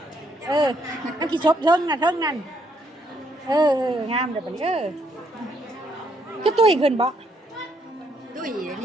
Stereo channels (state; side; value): normal; both; correlation 0.72